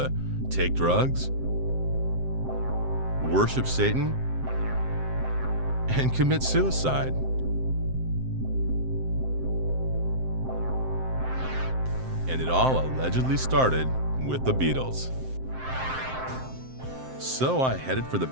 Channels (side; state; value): left; late; 7.7 ms